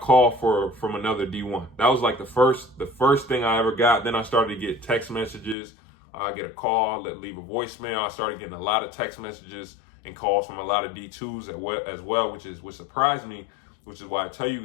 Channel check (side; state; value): right; drops out; at 5.6 s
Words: from another D1. That was like the first thing I ever got. Then I started to get text messages. I get a call, leave a voicemail. I started getting a lot of text messages and calls from a lot of D2s as well, which surprised me, which is why I tell